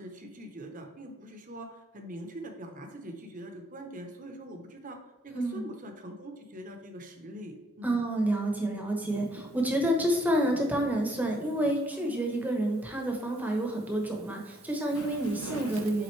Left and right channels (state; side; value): normal; both; correlation 0.69